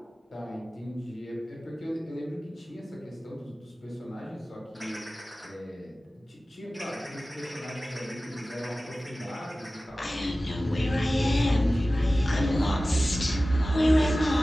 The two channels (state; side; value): normal; both; correlation 0.96